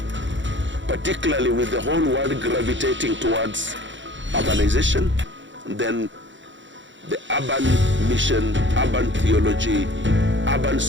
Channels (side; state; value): left; late; 0.54 ms